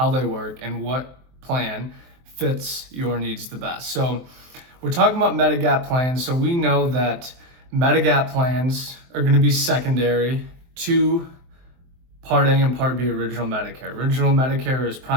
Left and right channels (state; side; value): late; left; 23 ms